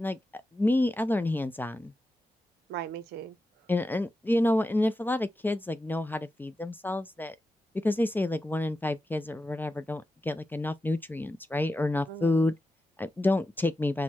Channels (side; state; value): both; normal; correlation 0.91